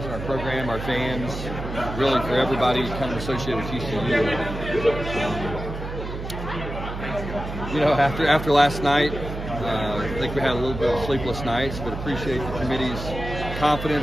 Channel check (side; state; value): right; noise; hum, 7 dB below the sound